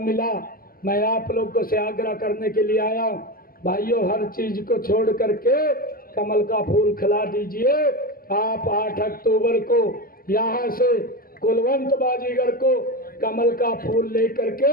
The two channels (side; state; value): right; late; 0.42 ms